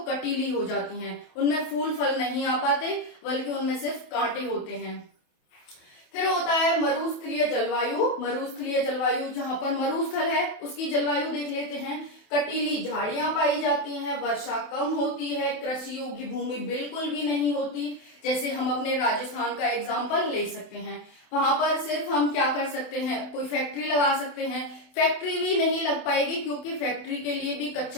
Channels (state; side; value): late; right; 27 ms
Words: कटीली हो जाती हैं, उनमें फूल फल नहीं आ पाते, बल्कि उनमें सिर्फ कांटे होते हैं। फिर होता है मरुस्थलीय जलवायु। मरुस्थलीय जलवायु, जहां पर मरुस्थल है उसकी जलवायु देख लेते हैं। कटीली झाड़ियां पाई जाती हैं, वर्षा कम होती है, कृषि योग्य भूमि बिल्कुल भी नहीं होती। जैसे हम अपने राजस्थान का एग्जाम्पल ले सकते हैं। वहां पर सिर्फ हम क्या कर सकते हैं? कोई फैक्ट्री लगा सकते हैं। फैक्ट्री भी नहीं लग पाएगी क्योंकि फैक्ट्री के लिए भी